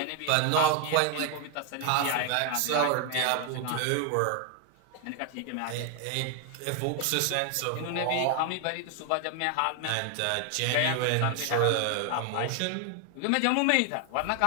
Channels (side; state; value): both; different; correlation 0.01